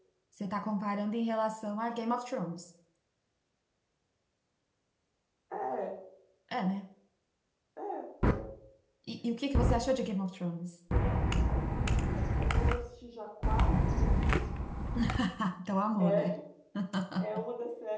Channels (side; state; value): both; identical; correlation 1.00